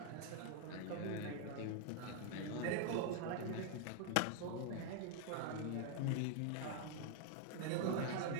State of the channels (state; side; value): different; both; correlation 0.00